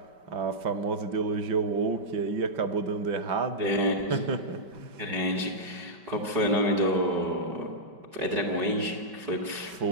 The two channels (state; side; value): late; left; 5.2 ms